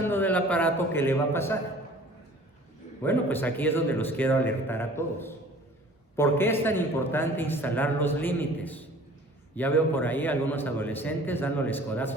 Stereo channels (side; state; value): both; normal; correlation 0.48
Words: del aparato, ¿qué le va a pasar? Bueno, pues aquí es donde los quiero alertar a todos. ¿Por qué es tan importante instalar los límites? Ya veo por ahí algunos adolescentes dándoles